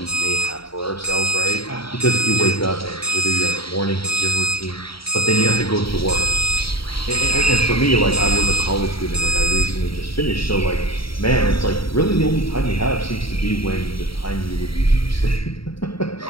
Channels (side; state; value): right; late; 0.75 ms